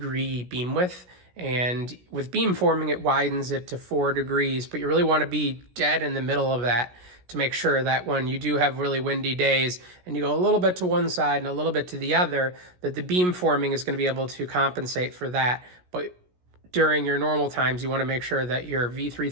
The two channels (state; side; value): late; left; 17 ms